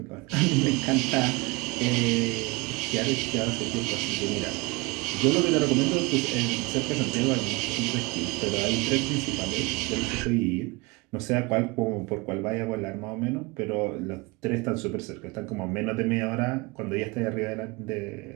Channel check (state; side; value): quieter; left; 24.7 dB